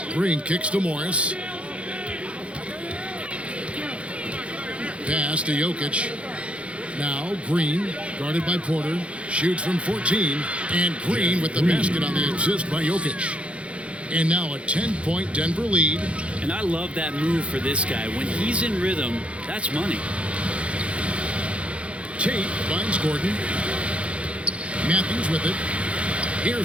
Green kicks to Morris. Pass to Jokic. Now Green, guarded by Porter, shoots from 14, and Green with the basket on the assist by Jokic. And now a 10-point Denver lead. And I love that move for this guy. When he's in rhythm, that's money. Tate finds Gordon. Matthews with it.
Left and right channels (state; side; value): late; left; 0.061 ms